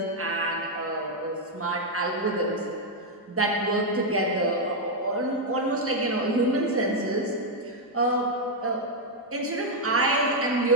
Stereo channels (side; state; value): both; normal; correlation -0.01